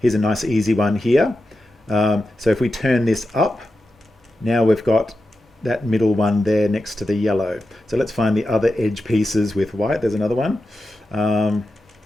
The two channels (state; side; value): normal; both; correlation 0.90